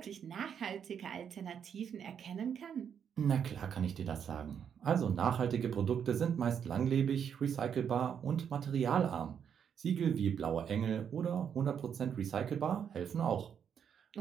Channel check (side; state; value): left; quieter; 7.9 dB